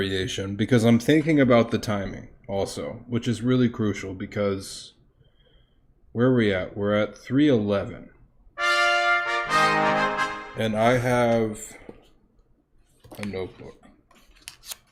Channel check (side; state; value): both; identical; correlation 1.00